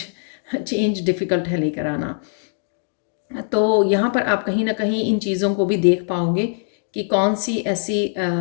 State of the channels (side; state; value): right; silent; digital silence